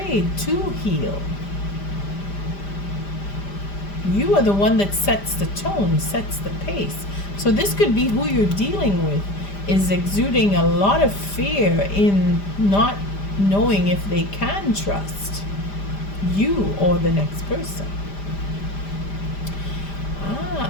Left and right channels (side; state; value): right; late; 5.0 ms